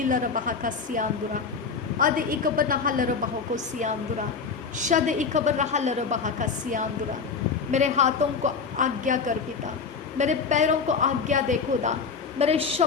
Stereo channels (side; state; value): right; quieter; 5.4 dB